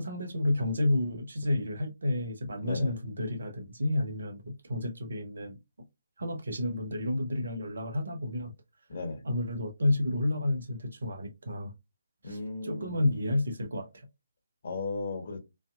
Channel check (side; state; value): both; inverted; correlation -0.87